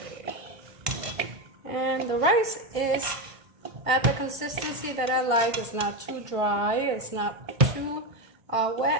And the rice is at the consistency that I like. It's not too dry, it's not too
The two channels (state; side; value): late; left; 1.5 ms